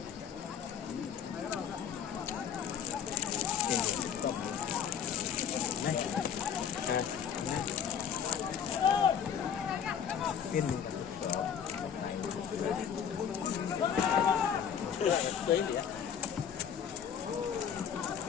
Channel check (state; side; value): quieter; right; 8.0 dB